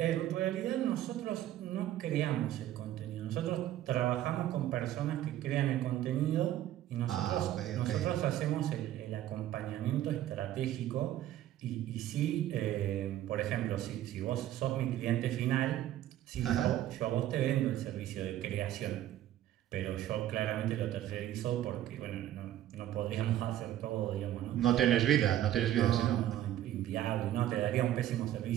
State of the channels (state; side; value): quieter; left; 12.8 dB